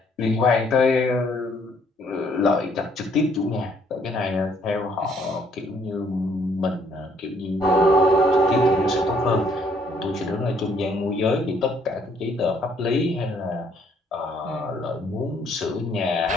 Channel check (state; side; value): normal; both; correlation 0.66